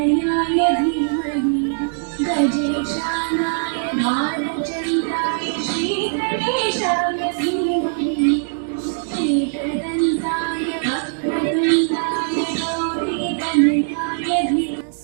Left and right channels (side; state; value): left; silent; digital silence